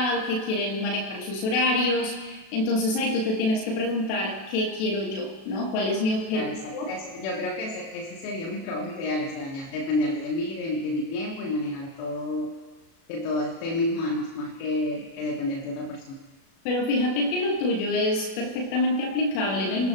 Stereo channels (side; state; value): right; late; 37 ms